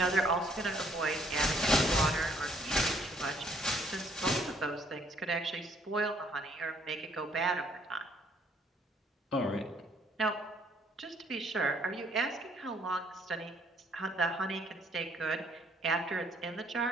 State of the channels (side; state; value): both; normal; correlation 0.65